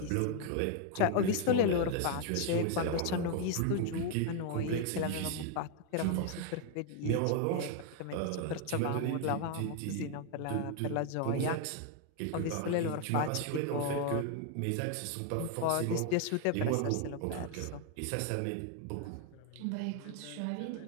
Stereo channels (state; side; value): different; both; correlation 0.01